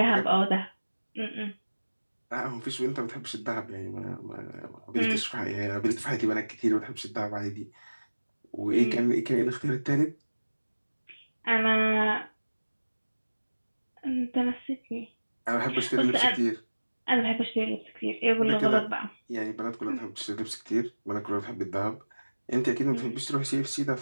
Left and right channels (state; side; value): inverted; both; correlation -1.00